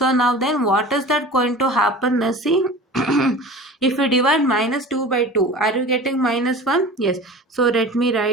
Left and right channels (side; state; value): both; normal; correlation 0.37